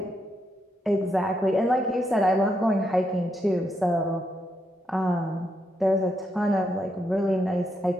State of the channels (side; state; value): both; normal; correlation 0.80